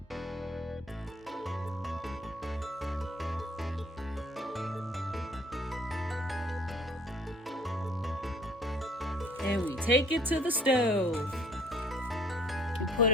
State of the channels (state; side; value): normal; both; correlation 0.57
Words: And we take it to the stove. You put